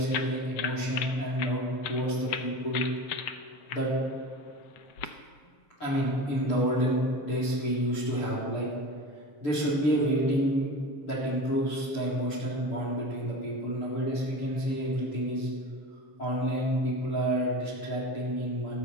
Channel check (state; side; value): late; right; 6.8 ms